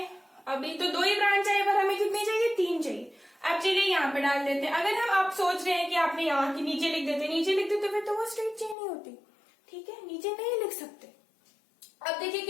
अभी तो 2 ही ब्रांच आए पर हमें कितनी चाहिए, 3 चाहिए। अब चलिए यहाँ पे डाल देते हैं। अगर हम आप सोच रहे हैं कि आपने यहाँ की नीचे लिख देते, नीचे लिख देते फिर तो वो स्ट्रेट चेन ही होती। ठीक है, नीचे नहीं लिख सकते। अब देखिए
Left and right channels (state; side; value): drops out; right; at 8.8 s